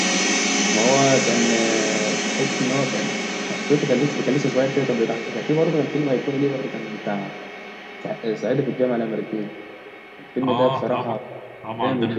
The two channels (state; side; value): identical; both; correlation 1.00